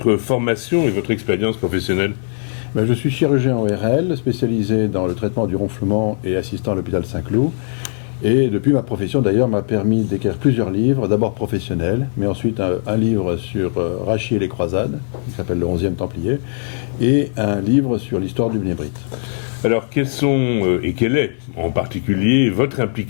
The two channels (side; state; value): right; silent; digital silence